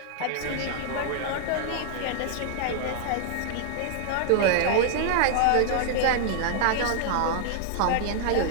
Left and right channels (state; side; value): different; both; correlation -0.01